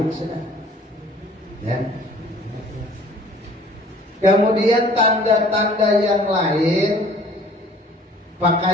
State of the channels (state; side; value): normal; both; correlation 0.52